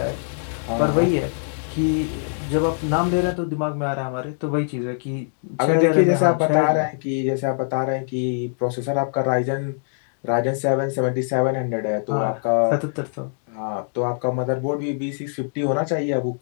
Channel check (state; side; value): silent; right; digital silence